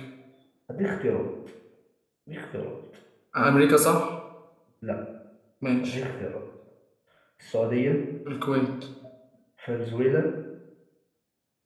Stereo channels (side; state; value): both; identical; correlation 1.00